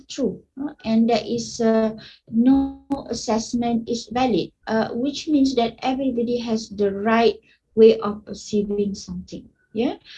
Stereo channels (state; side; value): identical; both; correlation 1.00